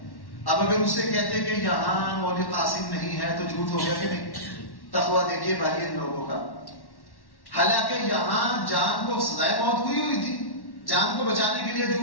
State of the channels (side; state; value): right; late; 1.1 ms